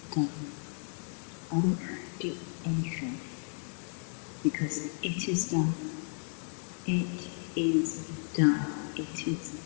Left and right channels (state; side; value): silent; right; 56 dB below the other